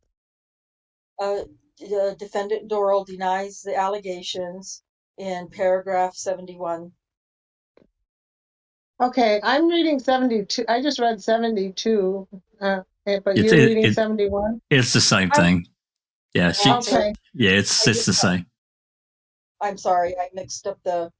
Defendant Dorrel denies the allegations in paragraph 71. Okay, I'm reading 72. I just read 72, but It's- you're reading 71? It's the same thing. Yeah, Okay. yeah, it's the same. I'm sorry, I mixed up it's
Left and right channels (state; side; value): identical; both; correlation 1.00